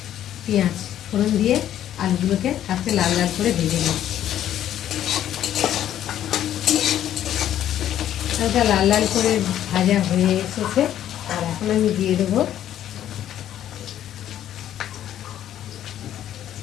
পেঁয়াজ ফোড়ন দিয়ে আলুগুলোকে আস্তে লাল লাল করে ভেজে নিই। হালকা লাল লাল করে ভাজা হয়ে এসেছে। আর এখন আমি দিয়ে দেবো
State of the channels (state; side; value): quieter; right; 11.4 dB